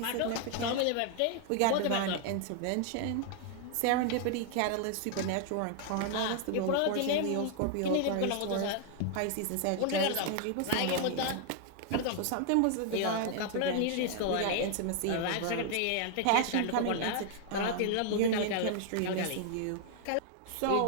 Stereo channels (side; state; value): both; different; correlation 0.00